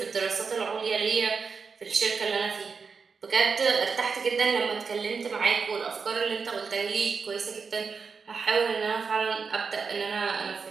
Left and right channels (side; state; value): left; quieter; 5.3 dB